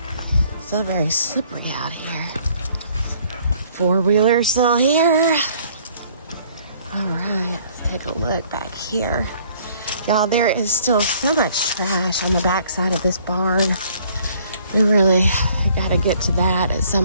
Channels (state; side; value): inverted; both; correlation -0.59